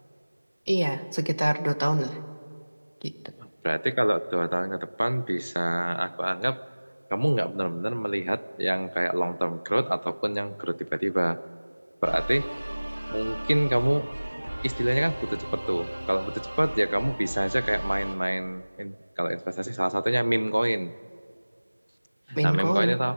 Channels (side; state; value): both; inverted; correlation -1.00